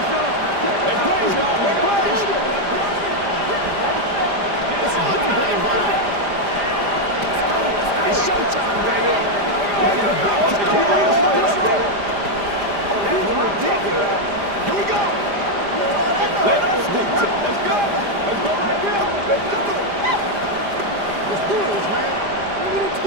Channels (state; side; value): late; left; 5.0 ms